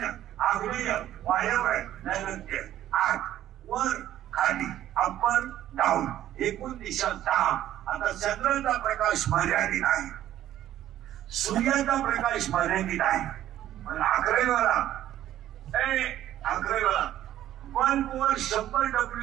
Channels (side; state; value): left; quieter; 12.5 dB